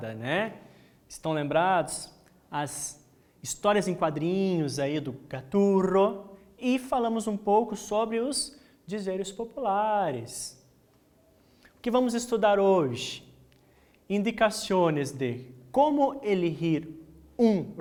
né? Estão lembrados? As histórias em quadrinhos aí do Gaturro e falamos um pouco sobre os dizeres populares. O que vamos estudar hoje? Indicações de como elegir um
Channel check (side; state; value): both; identical; correlation 1.00